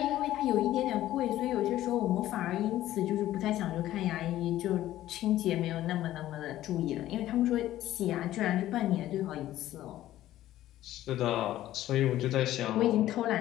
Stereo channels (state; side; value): quieter; right; 14.0 dB